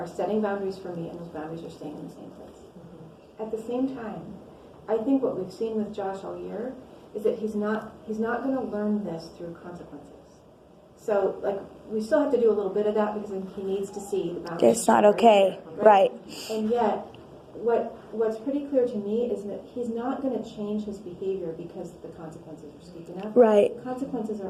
setting boundaries for me, and those boundaries are staying in the same place. At the same time, I think what we've seen with Josh all year is that he's not going to learn this through consequences. So, like, we still have to do a little bit of that because he needs to see the boundaries. It's not okay, right? And yet, what's pretty clear to me is that he's not going to change his behavior because the consequences are steep enough. Right. The consequences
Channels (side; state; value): both; identical; correlation 1.00